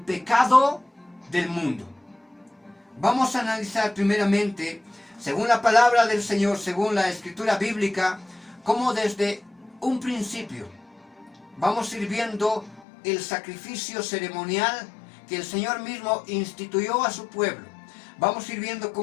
del mundo. Vamos a analizar primeramente, según la palabra del Señor, según la escritura bíblica, cómo desde un principio vamos a ir viendo el sacrificio ceremonial que el Señor mismo instituyó a su pueblo. Vamos a ir viendo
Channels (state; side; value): drops out; right; at 12.9 s